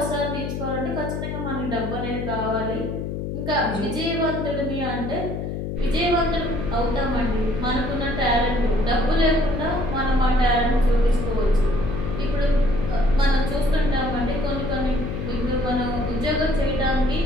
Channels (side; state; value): left; noise; hum, 4 dB below the sound